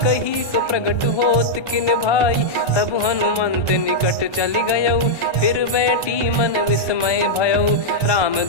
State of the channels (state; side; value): late; right; 1.3 ms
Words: कही सो प्रगट होत किन भाई, तब हनुमंत निकट चली गयऊ। फिर बैठी मन विस्मय भयऊ, राम